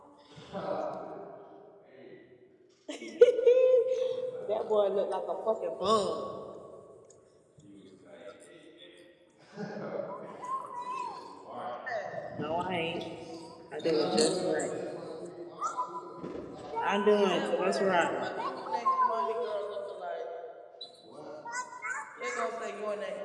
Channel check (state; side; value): identical; both; correlation 1.00